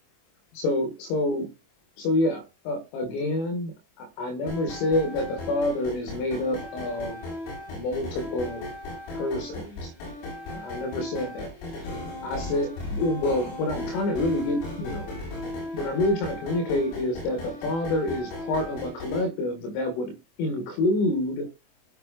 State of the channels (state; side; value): late; right; 24 ms